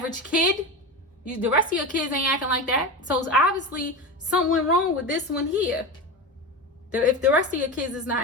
kid, the rest of your kids ain't acting like that. So it's obviously something wrong with this one here. If the rest of your kids is not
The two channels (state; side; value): normal; both; correlation 0.23